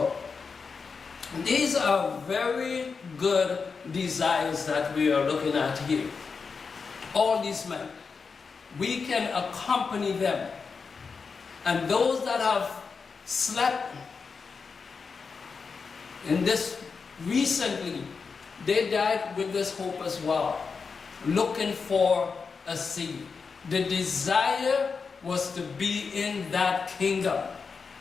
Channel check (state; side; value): quieter; right; 5.2 dB